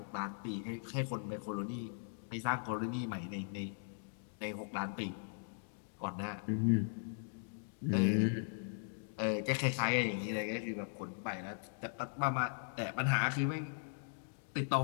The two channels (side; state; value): right; silent; digital silence